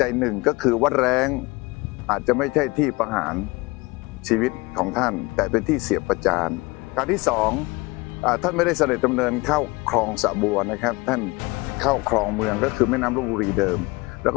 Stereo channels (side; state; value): right; quieter; 24.3 dB